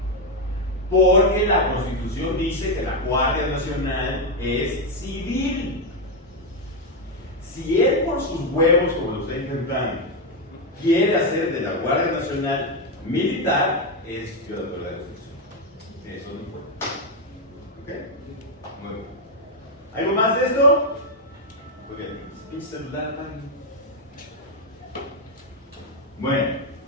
Porque la Constitución dice que la Guardia Nacional es civil. Si él por sus huevos, como lo está intentando, quiere hacer de la Guardia Nacional militar, es violador de la Constitución. Eso no puede. ¿Ok? Muy bien. ¿Algo más de esto? Muy bien. Pinche celular, man. Bueno,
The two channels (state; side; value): normal; both; correlation 0.05